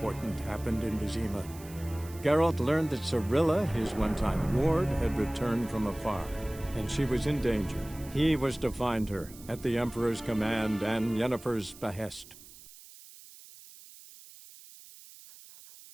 happened in Vizima. Geralt learned that Cirilla, his one-time ward, had returned from afar, and she was in danger. He was to find her, at the Emperor's command and Yennefer's behest.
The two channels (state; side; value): noise; right; hiss, 19 dB below the sound